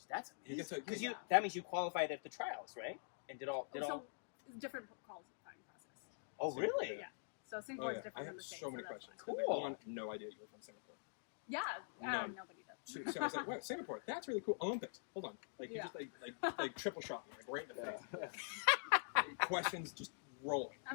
That's You get amazing. to- Because that means you qualified at the trials, right? And did all. So different qualifying process. Oh, So, really? Yeah. So Oh, Singapore is yeah. different I than have the States. so many that's questions. fine. Cool. One, no idea you were from Singapore. Yeah. None. Nobody does. So I was like, wait, Singapore, that's really cool. Olympics, hold on. Like, you Yeah. just like triple shot me, like right in the Yeah. face. Questions just rolling.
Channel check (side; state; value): right; silent; digital silence